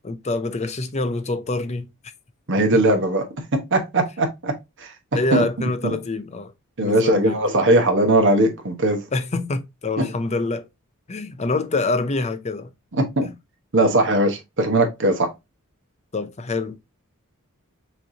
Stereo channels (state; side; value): normal; both; correlation 0.15